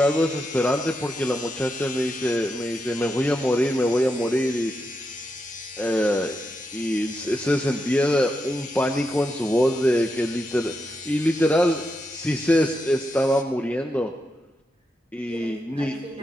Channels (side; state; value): both; normal; correlation 0.85